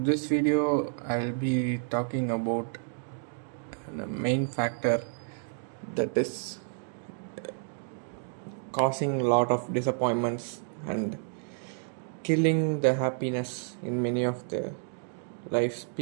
video I'll be talking about the main factor that is causing a lot of disappointments and killing the happiness in many of the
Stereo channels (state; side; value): silent; left; 58 dB below the other